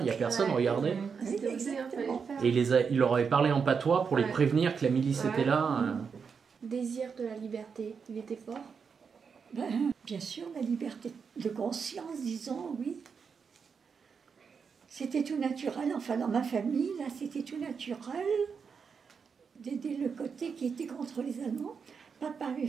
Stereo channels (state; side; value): quieter; left; 6.0 dB